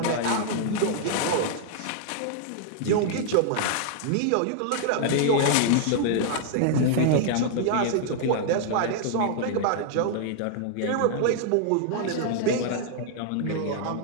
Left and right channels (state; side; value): different; both; correlation -0.01